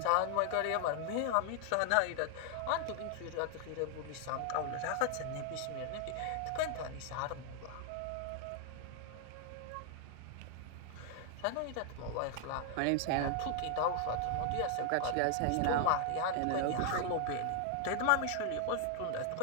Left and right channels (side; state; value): both; different; correlation 0.00